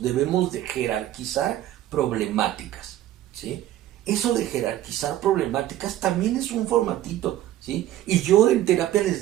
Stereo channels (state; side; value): quieter; left; 13.3 dB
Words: debemos de jerarquizar problemáticas, ¿sí? Eso de jerarquizar problemáticas también es un formatito, ¿sí? Y yo en terapia